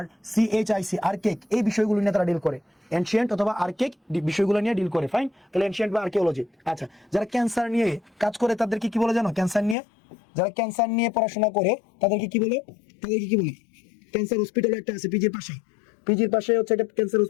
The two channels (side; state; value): right; drops out; at 9.8 s